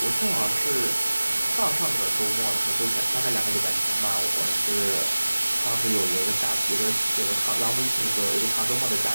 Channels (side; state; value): both; inverted; correlation -1.00